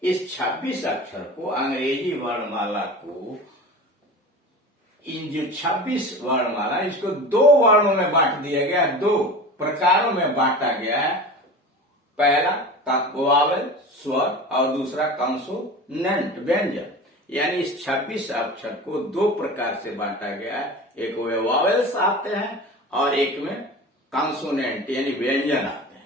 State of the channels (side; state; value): both; normal; correlation 0.33